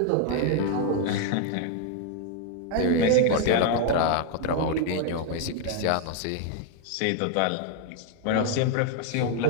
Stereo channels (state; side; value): different; both; correlation 0.00